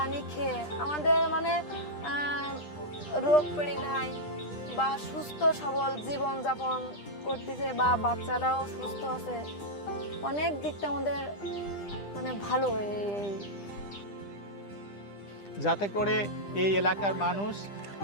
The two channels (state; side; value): late; right; 10 ms